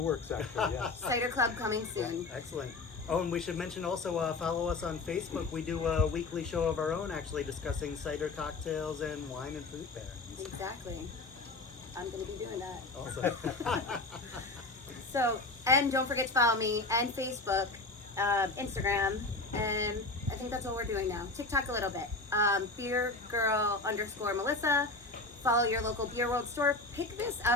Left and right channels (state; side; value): quieter; right; 3.3 dB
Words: works, actually, yes. Cider club coming soon. Excellent. Oh, and we should mention also follow us on Facebook. We do a weekly show of our own, actually discussing cider cocktails and wine and fruit pairings. Exactly. I'm gonna be doing that. Awesome. So, and don't forget to follow me and Facebook, Instagram, and I think that's all we're doing now. TikTok a little bit. BeerGirl_Melissa. Follow your local Beer World store. Pick this